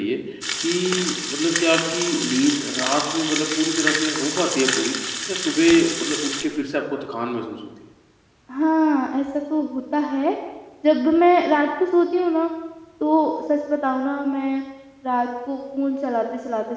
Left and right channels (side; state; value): both; identical; correlation 1.00